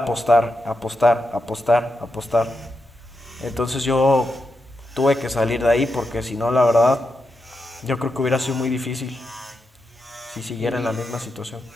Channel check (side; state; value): both; normal; correlation 0.86